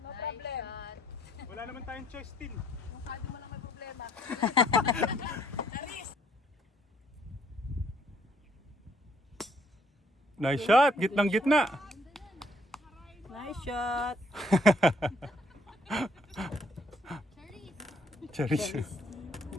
No problem. Wala naman tayong choice, Tin. Yung kado mo lang may problema. Nice shot! Gitnang gitna! Nice shot. Cherries.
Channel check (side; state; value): both; normal; correlation 0.66